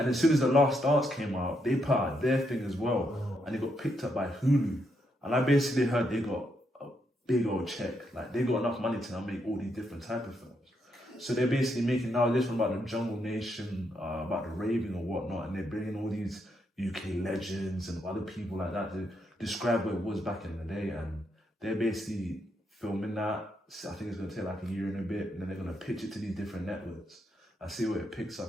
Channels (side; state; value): both; normal; correlation 0.79